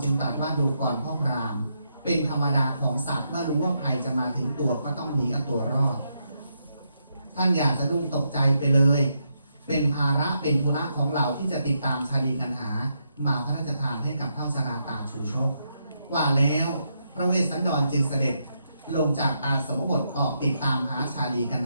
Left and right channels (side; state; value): both; inverted; correlation -0.80